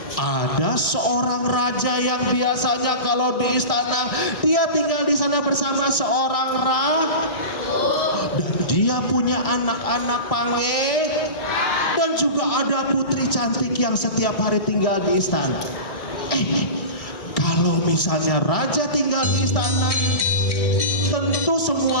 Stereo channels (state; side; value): late; right; 1.6 ms